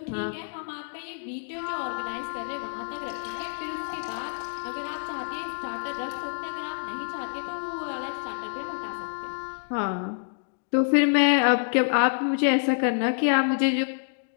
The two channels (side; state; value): right; silent; digital silence